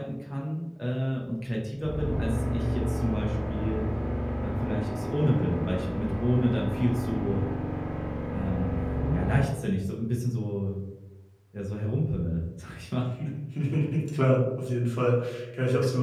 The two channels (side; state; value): both; identical; correlation 1.00